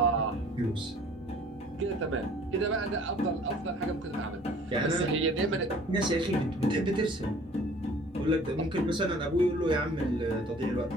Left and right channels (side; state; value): both; normal; correlation 0.51